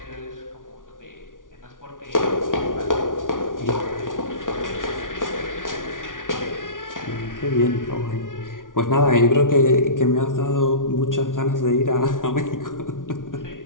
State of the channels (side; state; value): right; late; 0.88 ms